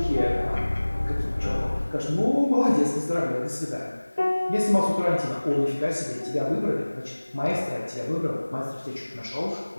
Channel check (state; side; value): inverted; both; correlation -1.00